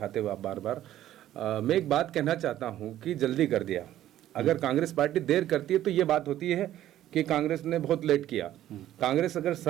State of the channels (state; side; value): quieter; left; 12.8 dB